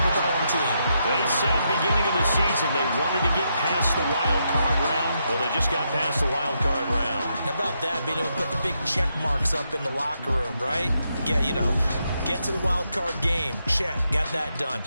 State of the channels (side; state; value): both; inverted; correlation -0.81